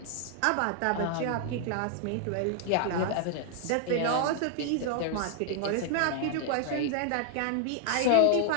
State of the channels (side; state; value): both; different; correlation 0.00